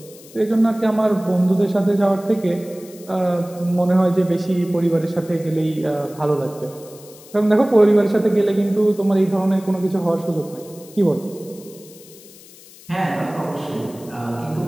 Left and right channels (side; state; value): left; noise; hiss, 21 dB below the sound